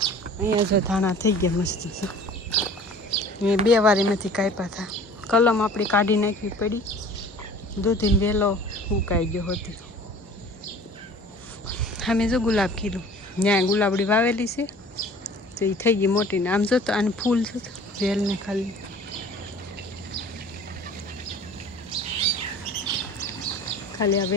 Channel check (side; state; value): both; normal; correlation 0.46